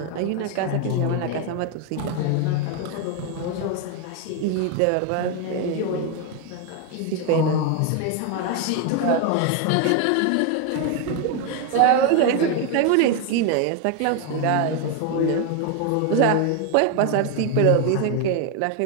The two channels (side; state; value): both; different; correlation 0.01